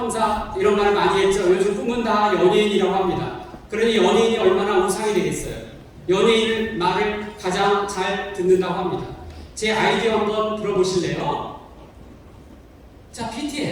이런 말을 많이 했죠. 요즘 꿈은 다 연예인이라고 합니다. 그러니 연예인이 얼마나 우상이 되겠어요. 연예인 말을 가장 잘 듣는다고 합니다. 제 아이디어 한번 들어보실래요? 자,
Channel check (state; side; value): identical; both; correlation 1.00